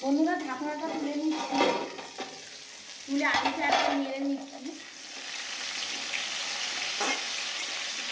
বন্ধুরা, ঢাকনাটা তুলে নিচ্ছি, তুলে আলুটা একটু নেড়ে নিচ্ছি।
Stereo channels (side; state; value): both; identical; correlation 1.00